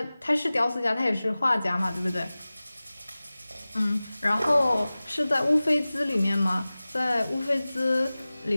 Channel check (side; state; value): both; inverted; correlation -0.98